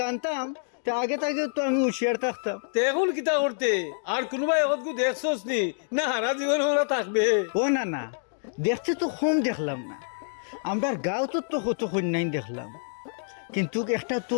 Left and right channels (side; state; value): right; silent; digital silence